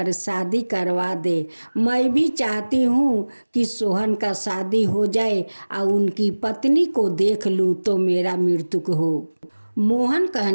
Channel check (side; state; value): both; inverted; correlation -1.00